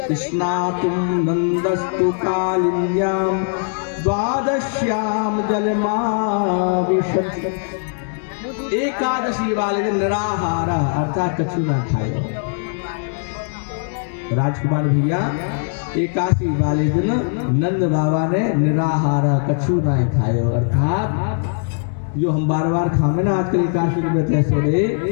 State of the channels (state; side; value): silent; right; digital silence